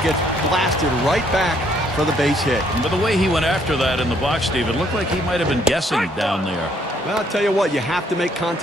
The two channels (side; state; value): both; normal; correlation 0.67